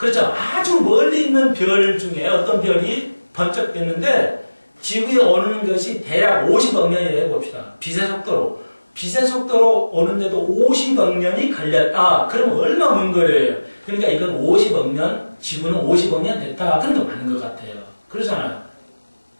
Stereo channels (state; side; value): inverted; both; correlation -1.00